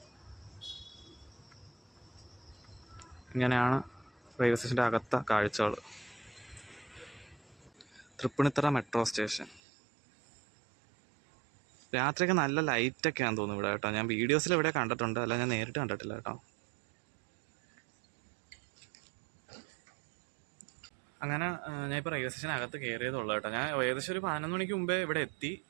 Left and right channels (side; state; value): left; drops out; at 9.6 s